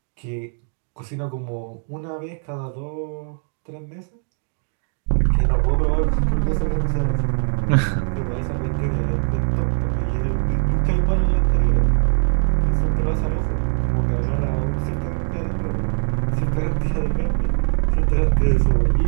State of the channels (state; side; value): silent; left; 62 dB below the other